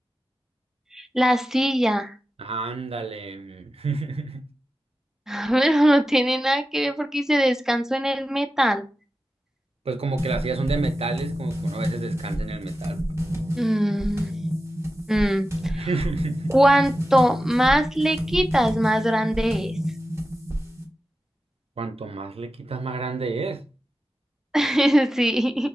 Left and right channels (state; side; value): normal; both; correlation 0.92